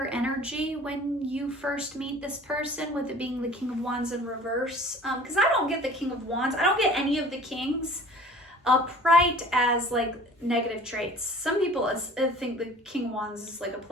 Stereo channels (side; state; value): both; normal; correlation 0.46